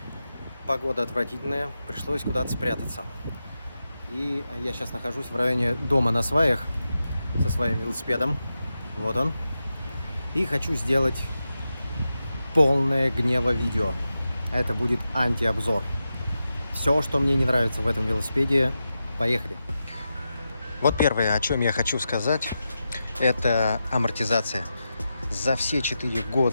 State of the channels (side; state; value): both; inverted; correlation -0.90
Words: Погода отвратительная, пришлось куда-то спрятаться. И я сейчас нахожусь в районе дома на сваях со своим велосипедом. Вот он. И хочу сделать полное гнева видео. Это будет антиобзор. Все, что мне не нравится в этом велосипеде, поехали. Вот первое, о чем я хочу сказать, это амортизация. За все 4